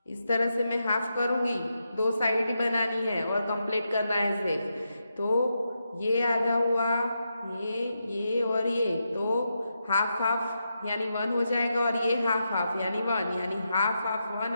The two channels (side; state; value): both; inverted; correlation -0.85